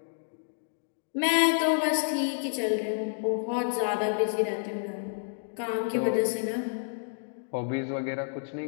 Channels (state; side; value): silent; right; digital silence